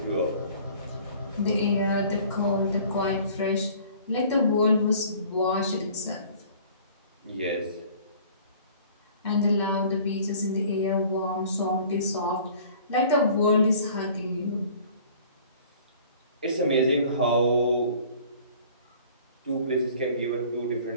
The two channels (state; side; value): inverted; both; correlation -0.50